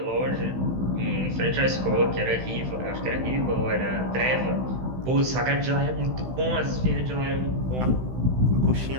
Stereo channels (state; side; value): late; left; 16 ms